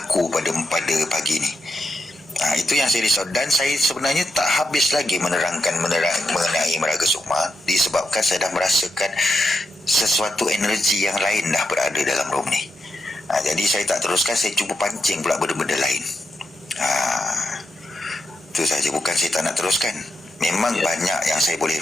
pada pagi ni, itu yang saya risau. Dan saya sebenarnya tak habis lagi menerangkan mengenai Meraga Sukma, disebabkan saya dah merasakan sesuatu energi yang lain dah berada dalam room ni. Jadi saya tak teruskan, saya cuba pancing pula benda-benda lain. Itu saja, bukan saya tak nak teruskan. Memang banyak yang saya boleh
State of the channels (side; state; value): both; normal; correlation 0.84